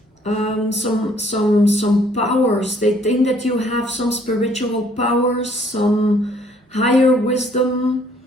some powers. They think that you have some spiritual powers, some higher wisdom,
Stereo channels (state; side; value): normal; both; correlation 0.62